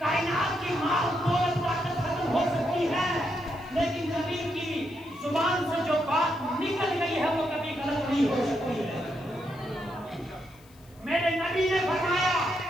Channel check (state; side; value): noise; left; hiss, 28 dB below the sound